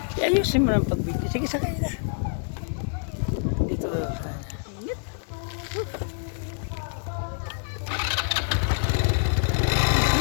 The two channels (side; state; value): right; silent; 61 dB below the other